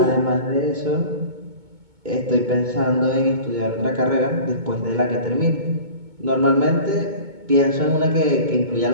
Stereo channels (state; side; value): late; left; 2.2 ms